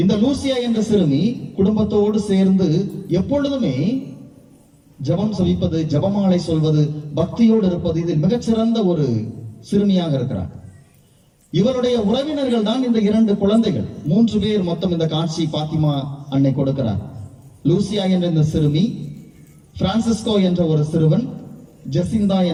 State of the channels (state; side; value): identical; both; correlation 1.00